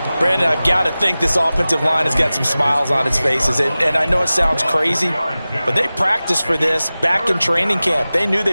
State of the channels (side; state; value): both; inverted; correlation -0.97